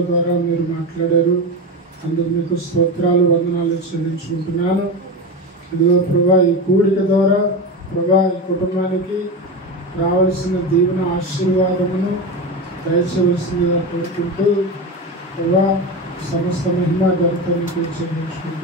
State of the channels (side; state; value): both; normal; correlation 0.21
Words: ద్వారా మీరు మాట్లాడారు. అందుకు మీకు స్తోత్రాలు, వందనాలు చెల్లించుకుంటున్నాను. ఇదిగో ప్రభా ఈ కూడిక ద్వారా ప్రభా ఈ కుటుంబానికి రావాల్సిన దీవెన ఆశీర్వాదమును దయచేయవలసిందిగా కోరుకుంటూ ప్రభా సమస్త మహిమ ఘనతను